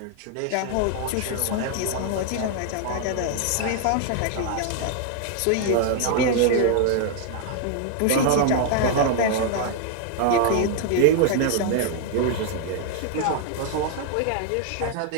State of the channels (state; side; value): different; both; correlation 0.00